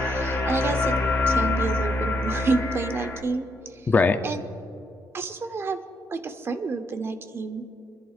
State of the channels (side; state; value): both; normal; correlation 0.76